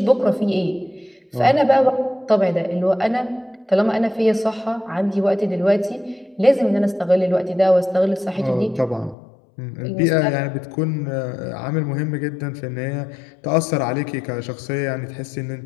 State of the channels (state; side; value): drops out; right; at 9.2 s